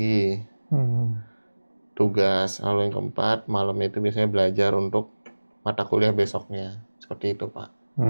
tugas, lalu yang keempat malamnya itu biasanya belajar untuk mata kuliah besoknya, seperti itu Pak.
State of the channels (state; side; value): inverted; both; correlation -1.00